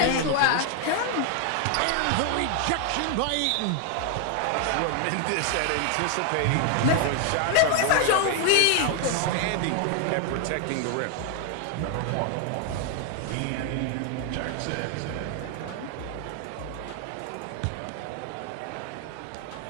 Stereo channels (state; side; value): different; both; correlation 0.00